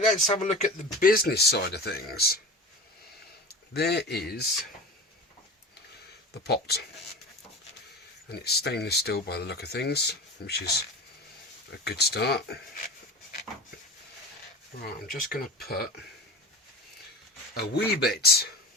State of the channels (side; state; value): both; normal; correlation 0.31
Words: have a look at the business side of things. There is the pot. And it's stainless steel by the look of things, which is a good start. Right, I'm just going to put a wee bit